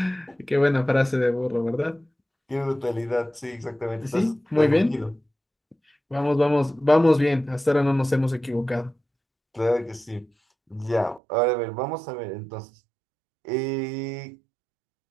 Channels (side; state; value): left; drops out; at 11.2 s